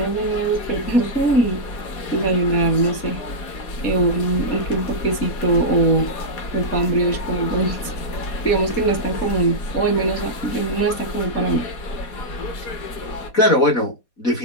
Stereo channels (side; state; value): right; late; 4.2 ms